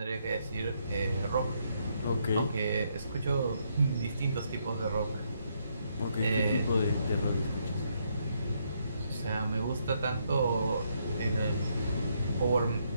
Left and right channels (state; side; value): inverted; both; correlation -0.75